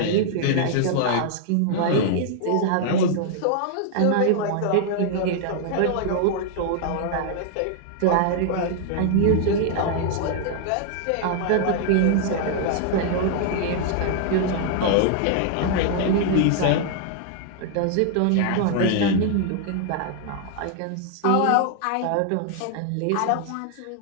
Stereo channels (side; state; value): both; different; correlation -0.01